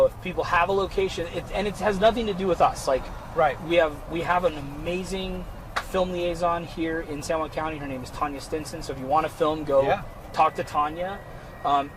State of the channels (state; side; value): identical; both; correlation 1.00